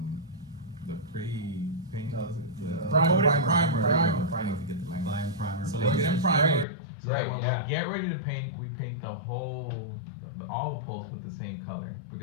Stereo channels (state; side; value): drops out; right; at 6.7 s